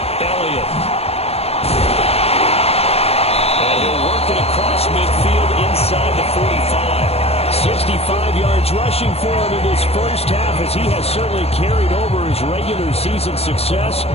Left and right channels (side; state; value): right; late; 0.29 ms